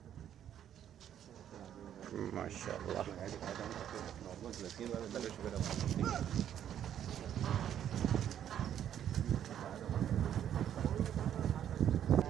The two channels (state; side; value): quieter; left; 10.1 dB